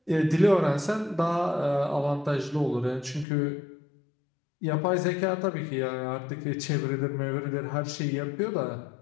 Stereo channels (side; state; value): right; drops out; at 3.2 s